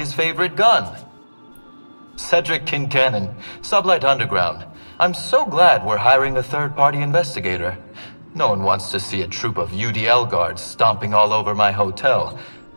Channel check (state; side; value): inverted; both; correlation -1.00